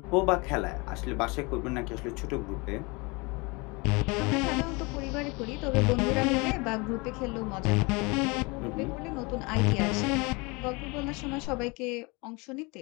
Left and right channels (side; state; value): right; quieter; 27.3 dB